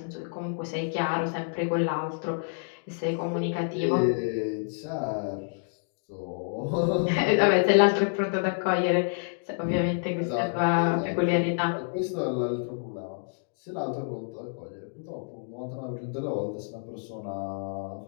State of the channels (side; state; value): right; silent; digital silence